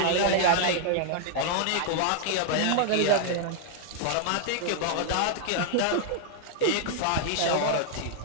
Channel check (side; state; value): both; different; correlation -0.01